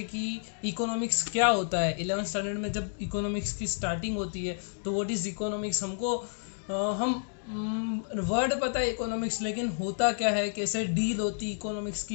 कि इकोनॉमिक्स क्या होता है। 11th स्टैंडर्ड में जब इकोनॉमिक्स की स्टार्टिंग होती है तो व्हाट इज़ इकोनॉमिक्स, हमको हम वर्ड पता है इकोनॉमिक्स, लेकिन होता क्या है, कैसे डील होती इकोनॉमिक्स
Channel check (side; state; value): right; silent; digital silence